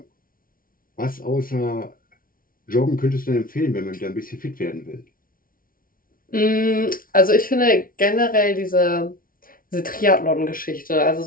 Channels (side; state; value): right; late; 0.42 ms